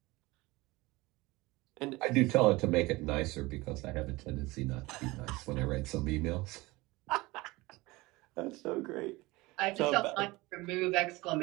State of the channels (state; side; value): quieter; left; 21.6 dB